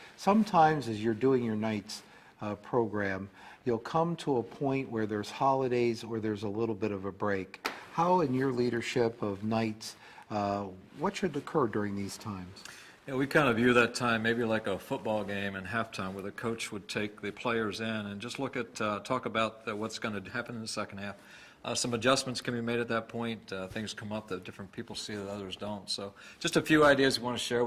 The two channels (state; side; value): identical; both; correlation 1.00